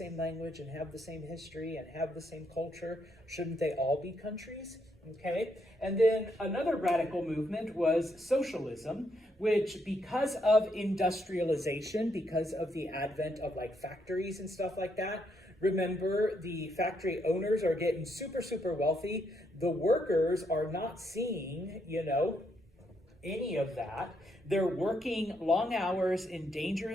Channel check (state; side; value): normal; both; correlation 0.76